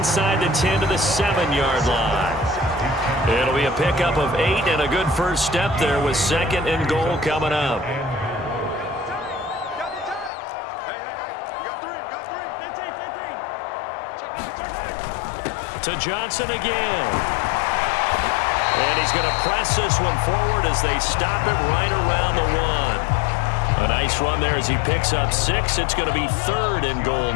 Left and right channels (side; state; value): right; drops out; at 10.3 s